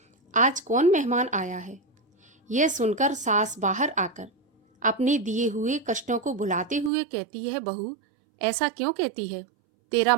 आज कौन मेहमान आया है। यह सुनकर सास बाहर आकर अपने दिए हुए कष्टों को भुलाते हुए कहती है, बहू ऐसा क्यों कहती है, तेरा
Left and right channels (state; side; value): drops out; left; at 6.9 s